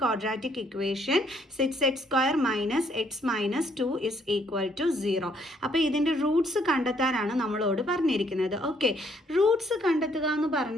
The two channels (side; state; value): both; normal; correlation 0.68